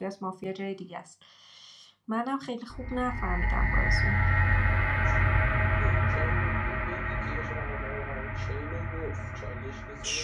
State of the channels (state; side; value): identical; both; correlation 1.00